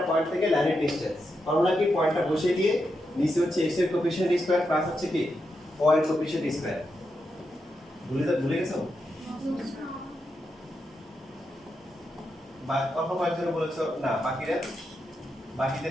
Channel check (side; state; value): both; normal; correlation 0.85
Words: পয়েন্ট থেকে লাইনের ডিসটেন্স ফর্মুলা কি, পয়েন্টটা বসিয়ে দিয়ে নিচে হচ্ছে x এর কোএফিশিয়েন্ট স্কয়ার প্লাস হচ্ছে কি y এর কোএফিশিয়েন্ট স্কয়ার। ভুলে গেছো? বা অল্প কয়েকজন বলেছো না,